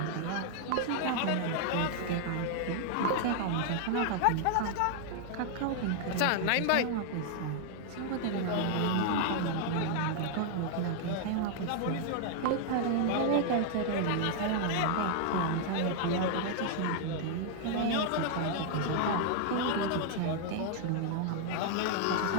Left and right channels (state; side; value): different; both; correlation 0.00